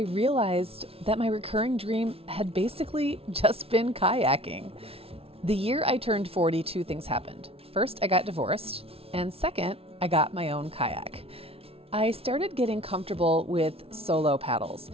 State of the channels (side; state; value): left; late; 0.28 ms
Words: realized that my recurring dream had basically just been kayaking. The year I turned 40, two things happened. First, I got divorced, and second, I got my own kayak. I started getting comfortable with solo paddles.